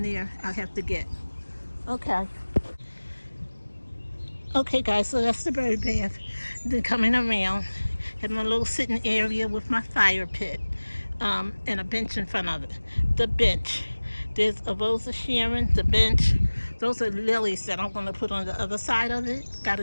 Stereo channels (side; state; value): both; inverted; correlation -1.00